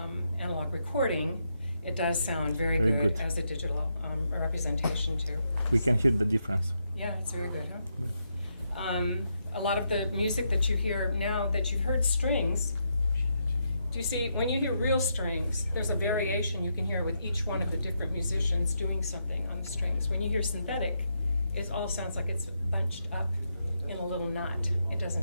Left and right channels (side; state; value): both; inverted; correlation -0.81